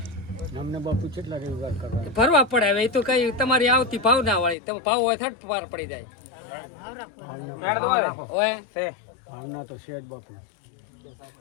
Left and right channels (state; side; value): drops out; right; at 4.5 s